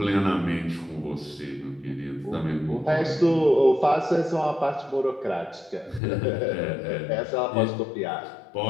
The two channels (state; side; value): drops out; right; at 6.0 s